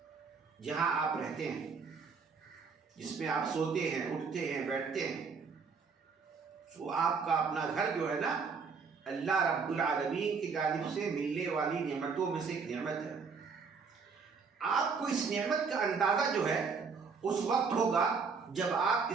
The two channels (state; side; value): quieter; left; 5.3 dB